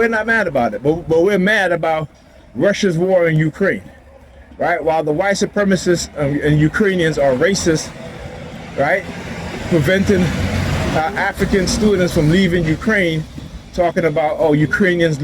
not mad about it, but we're mad about Russia's war in Ukraine, right? While the white supremacists and Ukrainians are racist, right? Preventing African students from leaving Ukraine, talking about, oh, Ukrainians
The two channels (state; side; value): identical; both; correlation 1.00